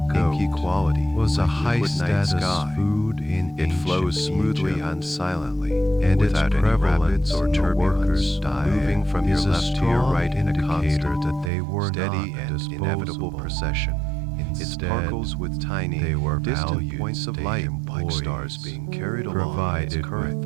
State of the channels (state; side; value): drops out; left; at 11.5 s